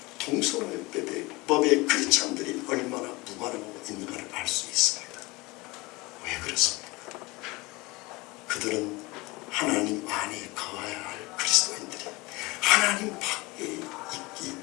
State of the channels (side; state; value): right; quieter; 23.1 dB